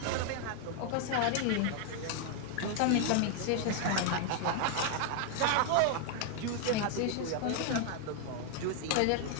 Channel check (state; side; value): different; both; correlation 0.00